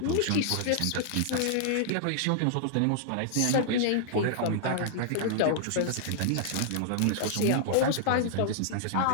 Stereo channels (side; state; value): both; different; correlation -0.01